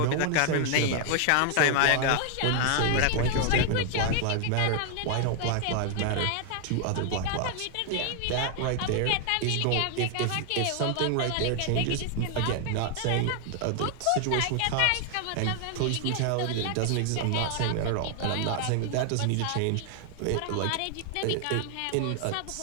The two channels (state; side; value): different; both; correlation 0.00